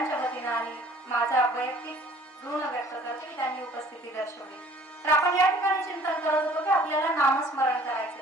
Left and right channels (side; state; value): both; normal; correlation 0.53